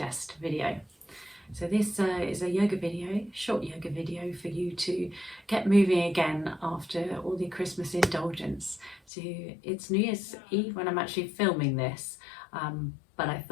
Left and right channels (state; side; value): drops out; right; at 9.0 s